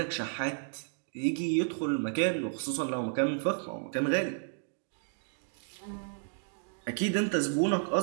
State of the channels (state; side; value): silent; left; digital silence